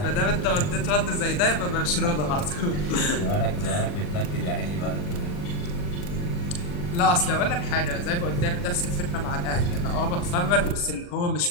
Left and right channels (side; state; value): right; late; 40 ms